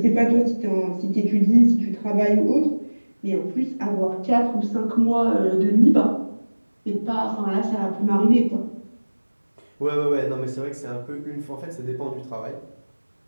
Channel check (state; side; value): inverted; both; correlation -1.00